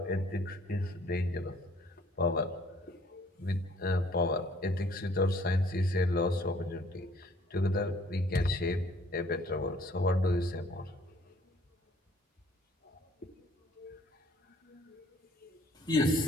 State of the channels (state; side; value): normal; both; correlation 0.59